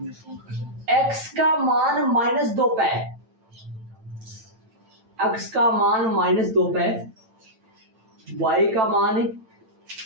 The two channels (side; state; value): left; late; 9.0 ms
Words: x का मान -2 पे है, x का मान -2 पे है, y का मान